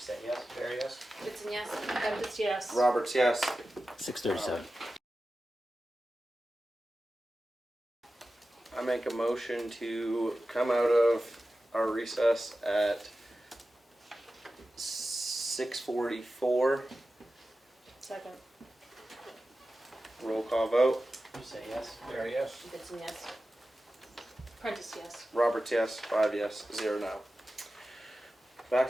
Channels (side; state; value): both; normal; correlation 0.94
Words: yes? Barry, yes. Goodson, yes. Prentice, yes. Roberts, yes. 6:37. I make a motion to come out of our recess at 6:44. Second. Roll call vote. You said yes? Barry, yes. Goodson, yes. Prentice, yes. Roberts, yes. 5 yes, 0 no. Back